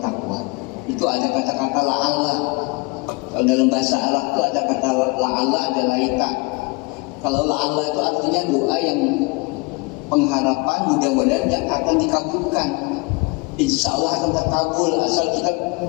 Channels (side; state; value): right; quieter; 27.5 dB